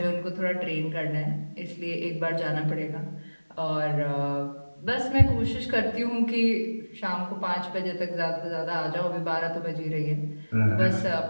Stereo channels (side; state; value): both; inverted; correlation -1.00